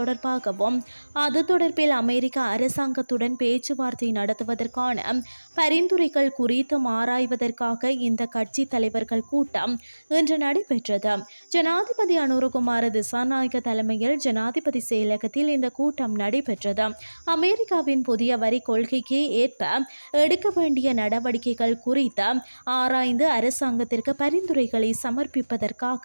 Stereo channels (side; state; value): both; inverted; correlation -1.00